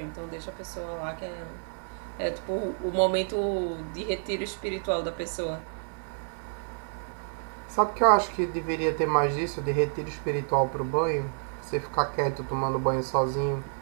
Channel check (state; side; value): silent; left; digital silence